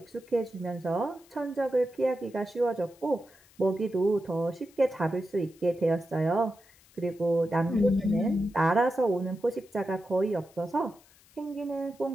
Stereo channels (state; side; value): noise; left; hiss, 28 dB below the sound